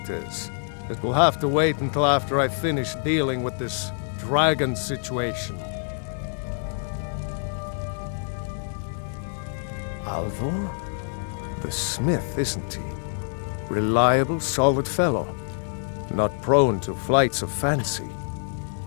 is, it will have to wait until after I finish dealing with this dragon situation. Alvor? The smith, isn't he? Reliable, solid fellow. Not prone to flights of fancy.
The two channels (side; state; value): right; silent; digital silence